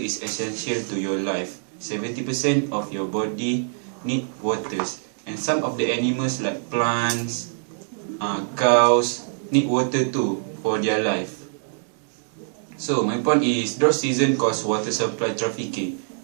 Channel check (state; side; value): silent; left; digital silence